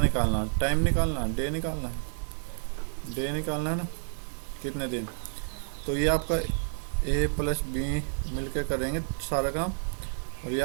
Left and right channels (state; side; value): silent; left; digital silence